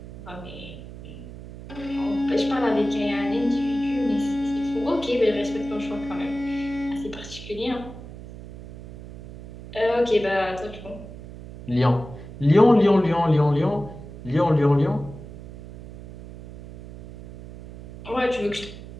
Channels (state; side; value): noise; right; hum, 14 dB below the sound